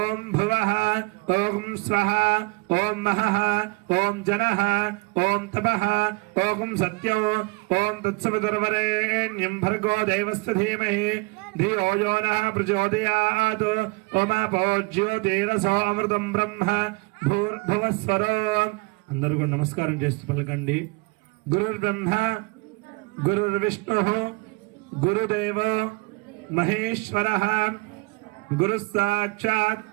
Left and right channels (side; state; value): left; quieter; 27.3 dB